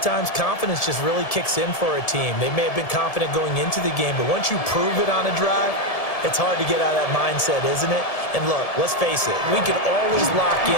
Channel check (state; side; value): late; right; 1.7 ms